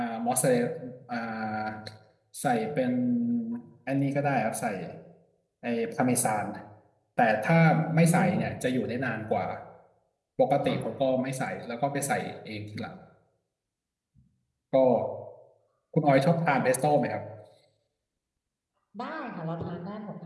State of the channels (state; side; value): identical; both; correlation 1.00